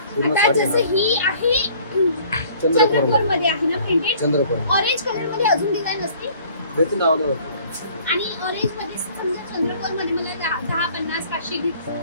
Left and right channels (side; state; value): both; inverted; correlation -0.54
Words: जसं ही आहे चंद्रकोर मध्ये आहे ना प्रिंटेड? चंद्रकोर ऑरेंज कलर मध्ये अजून डिझाइन असते भेटून आवडलं आणि ऑरेंज मध्ये समजा चंद्रकोर मध्ये मला 10 50 500